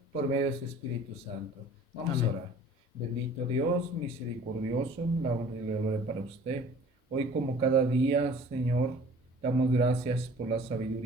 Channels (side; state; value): both; normal; correlation 0.48